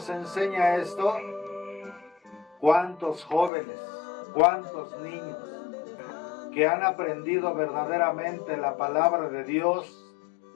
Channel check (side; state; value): right; drops out; at 3.5 s